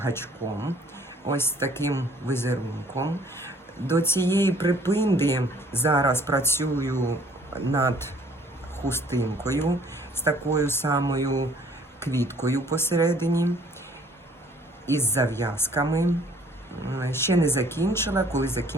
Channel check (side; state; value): both; normal; correlation 0.57